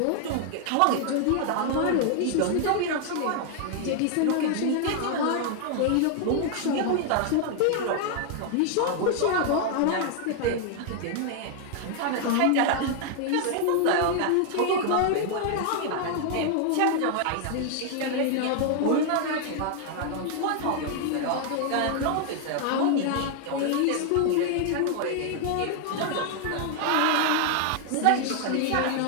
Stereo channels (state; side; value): different; both; correlation 0.00